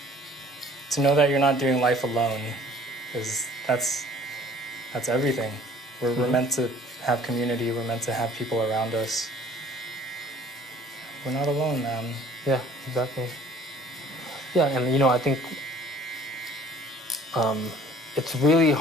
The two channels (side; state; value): both; normal; correlation 0.53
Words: To know that you're not doing life alone that's everything. We're meant to have community. We're meant to have people around us. We're not alone, man. Yeah, exactly. Yeah, and I think it's really